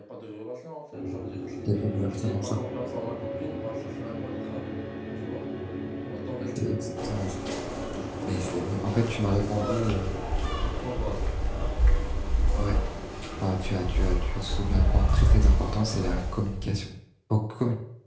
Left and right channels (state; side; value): identical; both; correlation 1.00